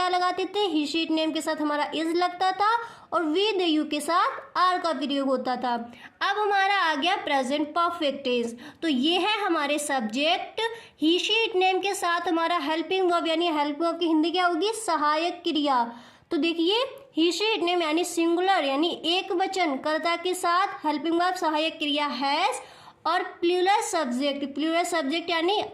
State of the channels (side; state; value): both; identical; correlation 1.00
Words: लगाते थे, ही, शी, इट, नेम के साथ हमारा इज लगता था और वी, दे, यू के साथ आर का प्रयोग होता था। अब हमारा आ गया प्रेजेंट परफेक्ट टेंस। तो ये है हमारे subject, he, she, it, name के साथ हमारा हेल्पिंग वर्ब, यानी हेल्पिंग वर्ब की हिंदी क्या होगी, सहायक क्रिया। तो देखिए ही, शी, इट, नेम यानी सिंगुलर यानी एक वचन कर्ता के साथ हेल्पिंग वर्ब सहायक क्रिया हैज, और प्लूरल सब्जेक्ट यानी